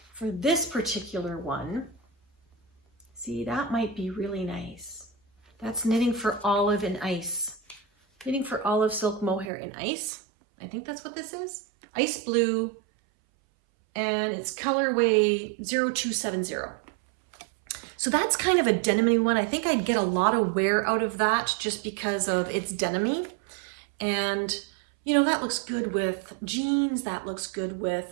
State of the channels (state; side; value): drops out; left; at 9.5 s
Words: for this particular one, see, that might be really nice. That's Knitting for Olive in Ice. Knitting for Olive Silk Mohair in Ice. I think that's what this is. Ice blue, and it's colorway 0270. So that's kind of a denim-y one. I think I'd get a lot of wear out of that just because of its denim-y. And, you know, that looks good with jeans. That looks good with